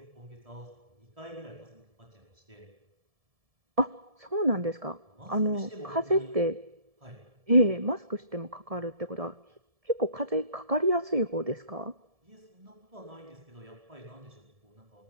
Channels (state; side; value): late; left; 1.7 ms